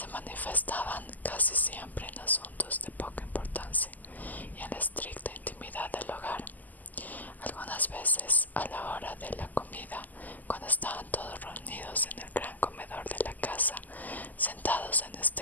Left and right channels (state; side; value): late; right; 0.082 ms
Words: manifestaban casi siempre en asuntos de poca importancia y en la estricta intimidad del hogar. Algunas veces, a la hora de la comida, cuando estaban todos reunidos en el gran comedor de la casa, sentados en